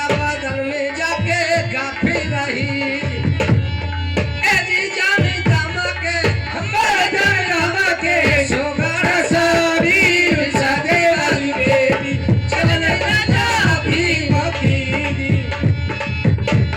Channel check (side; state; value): both; identical; correlation 1.00